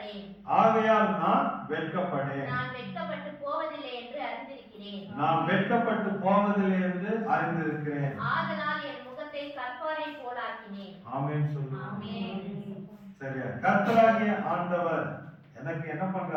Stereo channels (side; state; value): both; identical; correlation 1.00